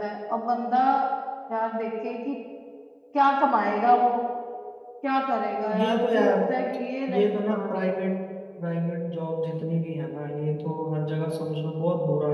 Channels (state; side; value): identical; both; correlation 1.00